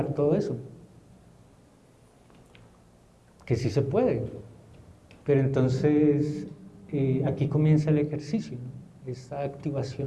todo eso? Que sí se puede, pero entonces aquí comienza el ejercicio, ¿no? Esta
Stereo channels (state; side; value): identical; both; correlation 1.00